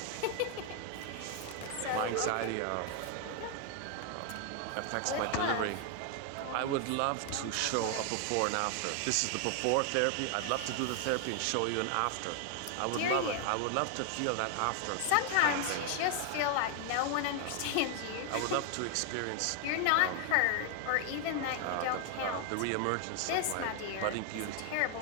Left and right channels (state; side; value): different; both; correlation 0.00